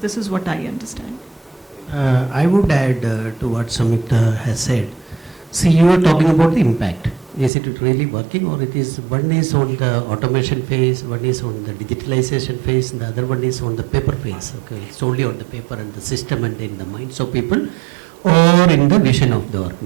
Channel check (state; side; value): drops out; left; at 7.5 s